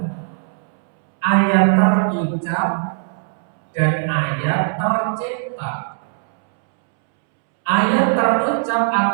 ayat terucap dan ayat tercipta. Ayat terucap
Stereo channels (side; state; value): left; silent; 66 dB below the other